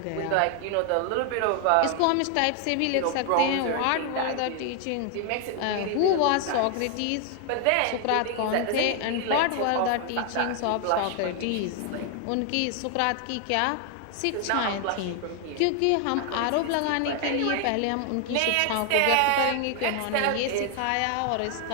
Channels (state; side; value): different; both; correlation 0.00